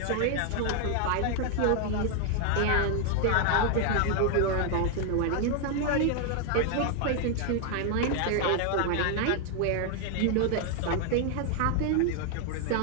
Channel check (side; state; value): both; different; correlation 0.00